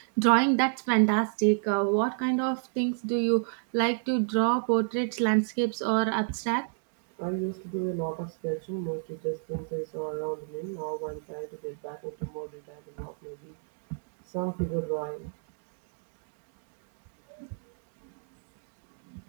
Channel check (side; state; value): left; silent; digital silence